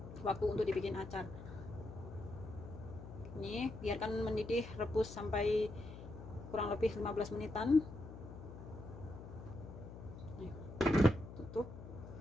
waktu untuk dibikin acar. Ini biarkan mendidih, rebus sampai kurang lebih 15 menitan. Nih, tutup,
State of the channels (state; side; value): noise; left; hum, 12 dB below the sound